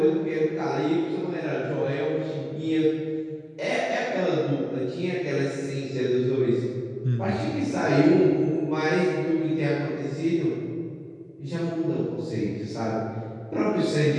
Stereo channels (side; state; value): both; identical; correlation 1.00